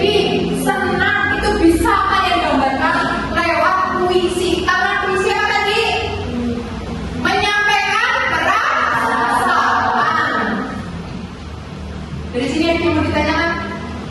senang. Itu bisa kalian gambarkan lewat puisi. Karena puisi apa tadi? Menyampaikan perasaan. Dari sini yang mau ditanyakan?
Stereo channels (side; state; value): both; identical; correlation 1.00